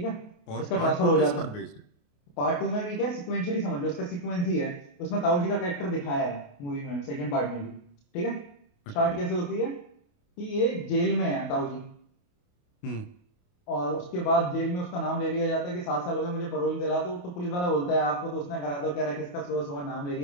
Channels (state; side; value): late; right; 28 ms